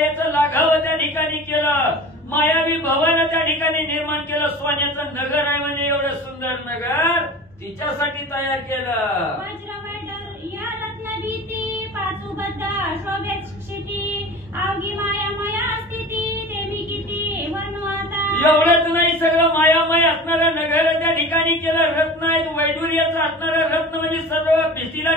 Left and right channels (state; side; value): normal; both; correlation 0.37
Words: लाघावं त्या ठिकाणी केलं. मायावी भवन त्या ठिकाणी निर्माण केलं. सोन्याचं नगर आहे म्हणजे एवढं सुंदर नगर तिच्यासाठी तयार केलं. या रत्नगीती पाचूबद्ध शोभेत क्षिती अवघी मायामया स्थिती देवी किती वर्णू आता. एवढंच नाही, सगळं मायामय असणारं नगर त्या ठिकाणी केलं. रत्न आहेत, वैडूर्याचं असणारं रत्न म्हणजे सर्व भिंतीला